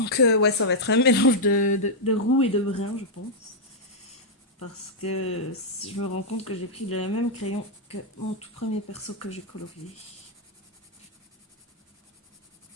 ouais, ça va être un mélange de roux et de brun, je pense. Parce que je me rends compte que j'ai pris le même crayon que mon tout premier perso que j'ai colorié.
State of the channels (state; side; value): normal; both; correlation -0.05